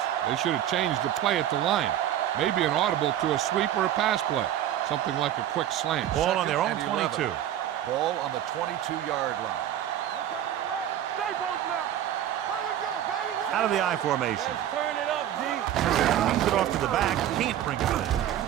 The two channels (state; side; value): quieter; left; 11.4 dB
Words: They should have changed the play at the line. Maybe an audible to a sweep or a pass play. Something like a quick slant. Ball on their own 22. Ball on the 22-yard line. We're coming to red. Stay both now. Here we go, baby. Out of the I formation. Let's turn it up, D. Brings it off to the back. Can't bring it in.